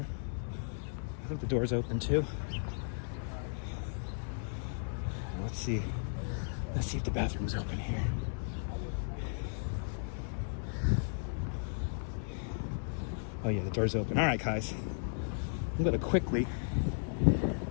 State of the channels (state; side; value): silent; right; digital silence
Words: I think the door's open too. Let's see. Let's see if the bathroom's open here. Oh yeah, the door's open. All right, guys. I'm gonna quickly